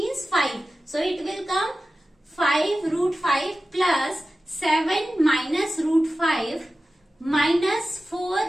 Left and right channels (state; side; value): normal; both; correlation 0.95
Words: 5. So it will come 5 root 5 plus 7 minus root 5 minus